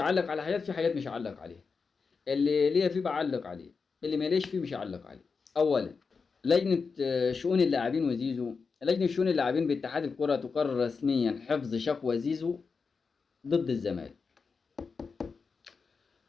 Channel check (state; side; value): quieter; right; 5.0 dB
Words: على حاجات، في حاجات مش هعلق عليها. اللي ليا فيه بعلق عليه، اللي ماليش فيه مش هعلق عليه. اولا، لجنة شؤون اللاعبين وزيزو. لجنة شؤون اللاعبين باتحاد الكرة تقرر رسميا حفظ شكوى زيزو ضد الزمالك،